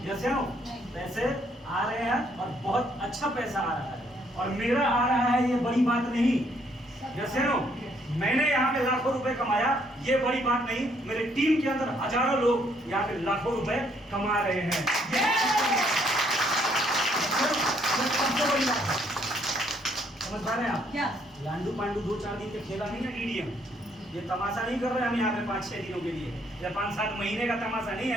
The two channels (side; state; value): both; normal; correlation 0.69